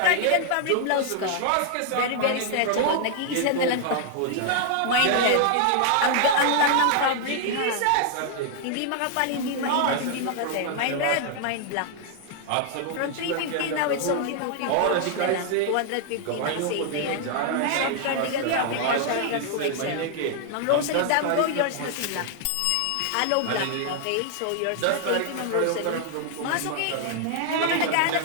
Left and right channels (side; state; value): both; different; correlation 0.00